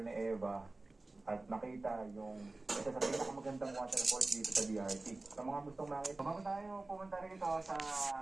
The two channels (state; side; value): quieter; left; 3.1 dB